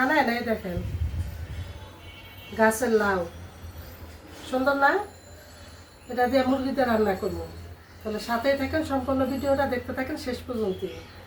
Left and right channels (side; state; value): both; identical; correlation 1.00